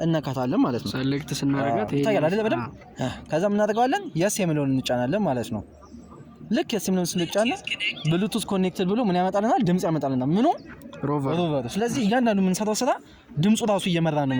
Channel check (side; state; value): both; identical; correlation 1.00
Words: እነካታለን ማለት ነው ሴሌክት ስናደርጋት ታያለ አይደል በደም ከዛ ምን እናደርጋለን የስ የሚለውን እንጫናለን ማለት ነው ልክ የስ የሚለውን ስንጫና ብሉቱዝ ኮኔክትድ ብሎ ምን ያመጣልናል ድምጽ ያመጣልናል ምኑ ሮቨር ስለዚህ እያንዳንዱ የምንሰራው ስራ ድምጹ ራሱ እየመራ ነው